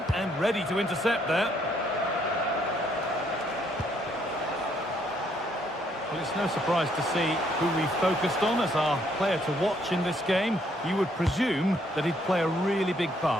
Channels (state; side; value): normal; both; correlation 0.69